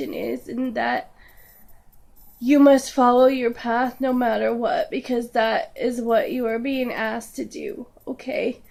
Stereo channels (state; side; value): identical; both; correlation 1.00